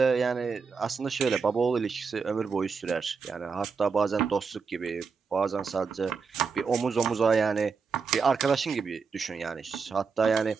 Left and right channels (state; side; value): quieter; left; 5.3 dB